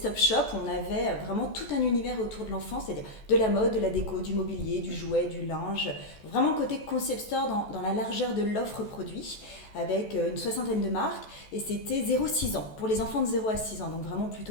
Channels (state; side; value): late; right; 14 ms